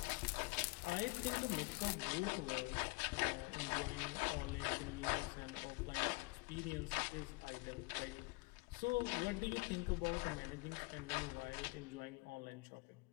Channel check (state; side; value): quieter; right; 27.6 dB